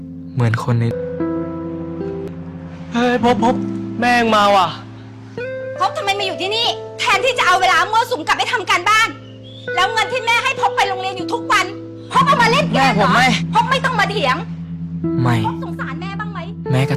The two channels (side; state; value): both; identical; correlation 1.00